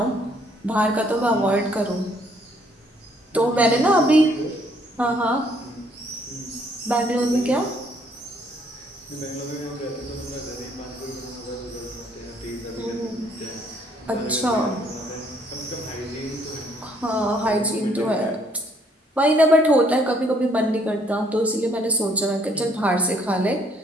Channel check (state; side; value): normal; both; correlation 0.66